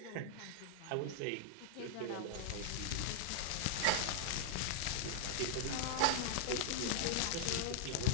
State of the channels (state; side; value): different; both; correlation -0.01